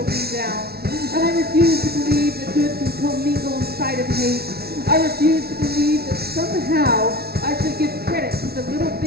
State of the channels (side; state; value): left; late; 0.45 ms